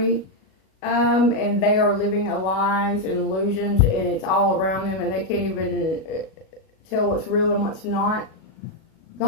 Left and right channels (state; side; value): late; right; 37 ms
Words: and they are living lies and illusions, and it's all around them, and they can't even tell what's real and what's not.